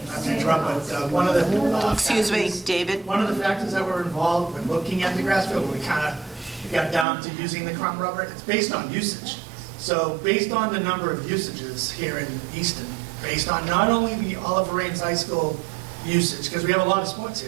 to interrupt, but one of the... Excuse me, David? One of the factors that were involved when looking at the grass field, when we kind of got down to using the crumb rubber, it's based on usage. So based on the number of usages here in Easton, based on not only the Oliver Ames High School usage, because we have a lot of sports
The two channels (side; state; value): left; drops out; at 7.1 s